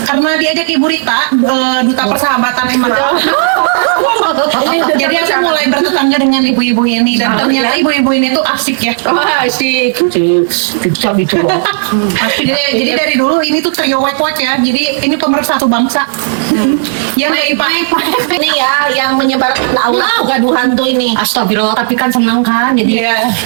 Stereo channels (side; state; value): left; silent; digital silence